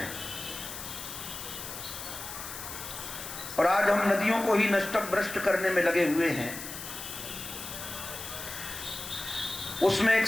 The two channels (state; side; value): noise; left; hiss, 9 dB below the sound